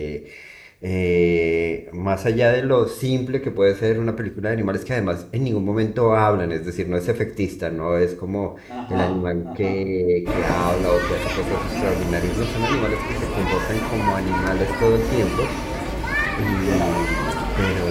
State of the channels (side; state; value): both; identical; correlation 1.00